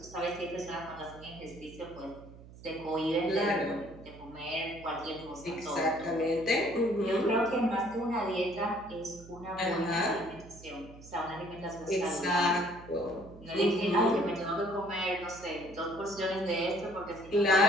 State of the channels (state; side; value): noise; right; hum, 18 dB below the sound